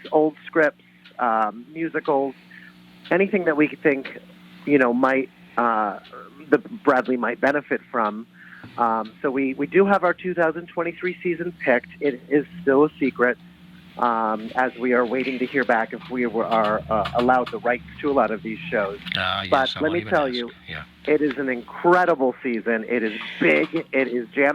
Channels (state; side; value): identical; both; correlation 1.00